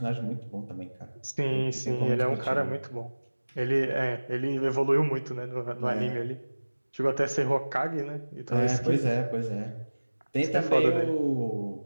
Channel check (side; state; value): both; inverted; correlation -1.00